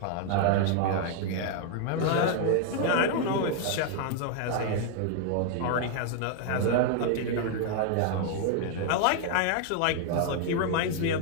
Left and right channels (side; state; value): both; different; correlation 0.00